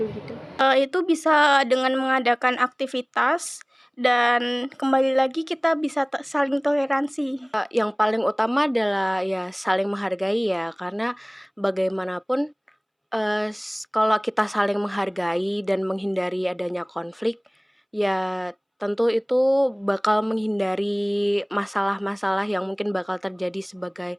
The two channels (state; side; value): identical; both; correlation 1.00